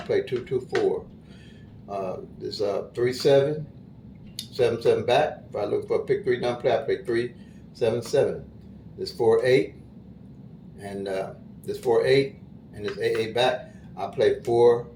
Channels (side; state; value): both; identical; correlation 1.00